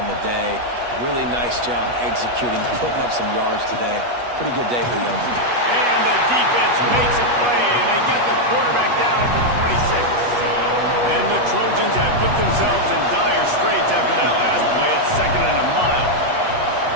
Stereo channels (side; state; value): left; late; 8.3 ms